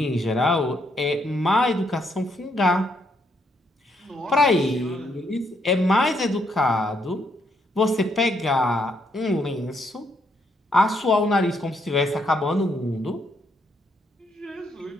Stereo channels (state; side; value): normal; both; correlation 0.74